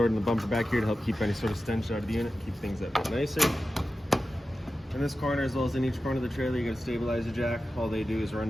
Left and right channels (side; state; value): both; normal; correlation 0.93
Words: in the bumper back here to help keep any sort of stench out of the unit, keep things a bit nicer. In this corner, as well as in each corner of the trailer, you got a stabilizer jack. All they do is